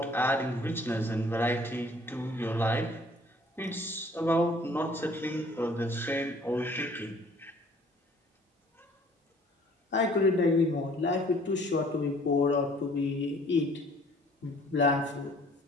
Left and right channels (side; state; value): both; normal; correlation 0.55